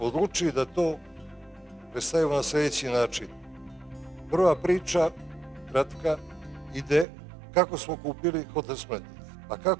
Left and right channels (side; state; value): left; drops out; at 7.1 s